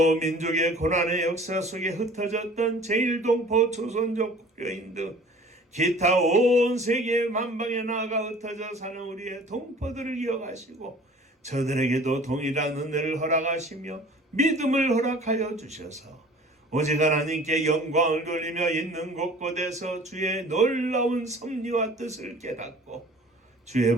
민족의 고난의 역사 속에 흩어졌던 제1동포 조선족 국교인 등 기타 온 세계 만방에 나아가 흩어져 사는 우리의 동포들을 이어가시고 저들에게도 동일한 은혜를 허락하시며 믿음을 허락하여 주셔서 오직 하나님께 영광을 돌리며 있는 곳곳에서 주의 놀라운 섭리와 뜻을 깨닫고 주의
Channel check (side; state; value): both; normal; correlation 0.47